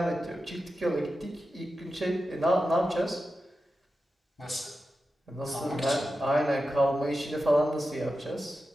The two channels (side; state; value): both; normal; correlation 0.91